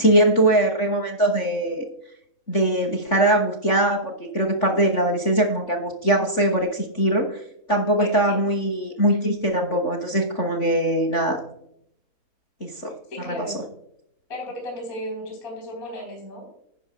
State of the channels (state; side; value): late; right; 3.5 ms